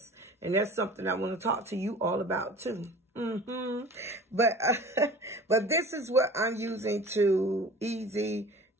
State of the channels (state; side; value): normal; both; correlation 0.42